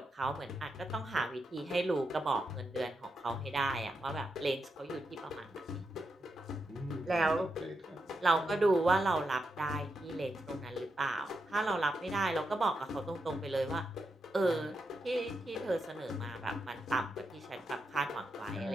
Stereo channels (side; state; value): both; normal; correlation 0.85